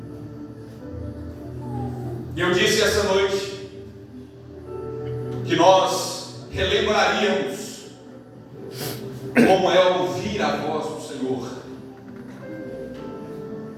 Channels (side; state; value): both; identical; correlation 1.00